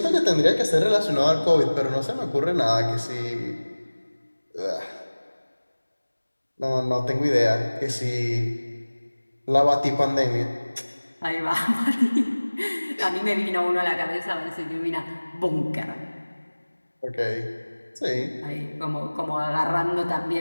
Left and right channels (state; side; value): inverted; both; correlation -1.00